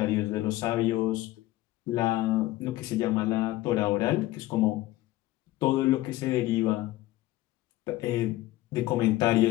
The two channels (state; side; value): quieter; right; 16.7 dB